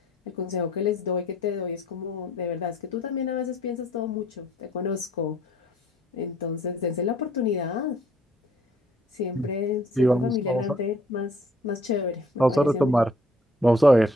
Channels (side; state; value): both; normal; correlation 0.61